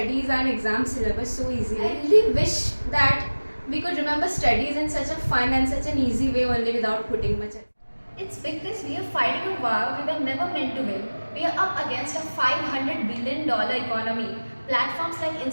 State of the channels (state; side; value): inverted; both; correlation -1.00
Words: and exam syllabus so easily? I really wish that we could remember studies in such a fun and such an easy way only without putting much effort. It's because we are fighting a war we were never meant to win. We are up against a $500 billion economy. Platforms like